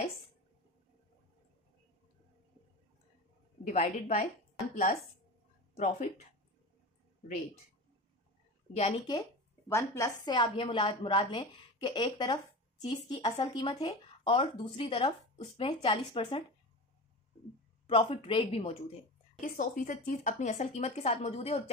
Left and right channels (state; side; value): normal; both; correlation 0.29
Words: divided by 1 plus profit rate. यानी कि 1 प्लस से आप ये मुराद लें कि एक तरफ चीज़ की असल कीमत है और दूसरी तरफ उसमें 40% प्रॉफिट रेट भी मौजूद है कि 100% चीज़ अपनी असल कीमत के साथ मौजूद है और